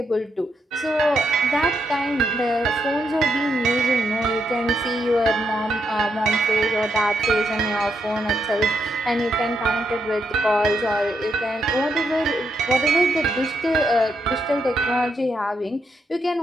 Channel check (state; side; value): normal; both; correlation 0.79